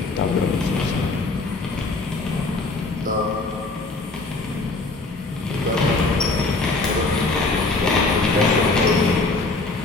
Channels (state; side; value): quieter; right; 3.4 dB